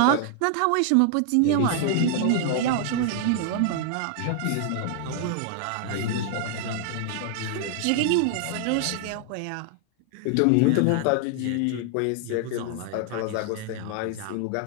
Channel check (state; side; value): different; both; correlation 0.00